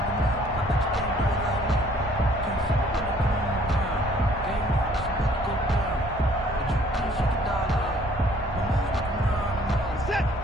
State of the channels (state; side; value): normal; both; correlation 0.59